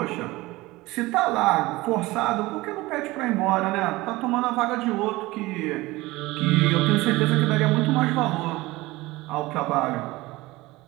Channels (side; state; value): left; quieter; 20.1 dB